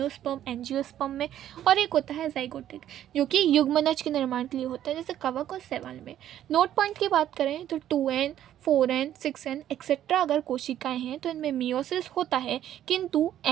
एंजियोस्पर्म में। और एक होता है जाइगोटिक जो कि युग्मनज के निर्माण के लिए होता है, जैसे कवक और शैवाल में। नोट पॉइंट की बात करें तो 2n, 4n, 6n एक्सेट्रा अगर कोशिकाएं हैं तो इनमें मियोसिस होता है, किंतु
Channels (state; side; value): quieter; left; 11.5 dB